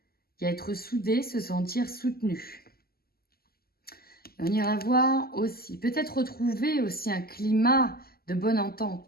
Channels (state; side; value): late; right; 0.45 ms